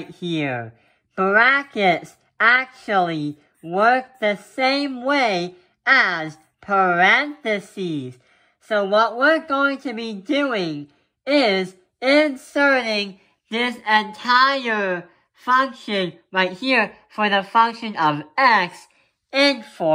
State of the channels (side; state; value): both; identical; correlation 1.00